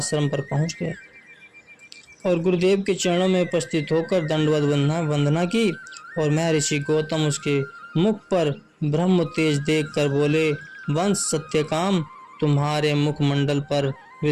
पर पहुंच गया और गुरुदेव के चरणों में उपस्थित होकर दंडवत वंदना की और महर्षि गौतम उसके मुख पर ब्रह्म तेज देखकर बोले, वंश सत्यकाम, तुम्हारे मुखमंडल पर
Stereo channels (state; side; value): identical; both; correlation 1.00